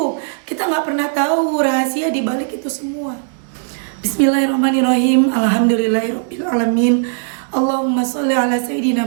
Kita nggak pernah tahu rahasia di balik itu semua. Bismillahirrahmanirrahim. Alhamdulillahirabbil alamin. Allahumma sholli ala sayyidina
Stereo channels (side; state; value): left; silent; digital silence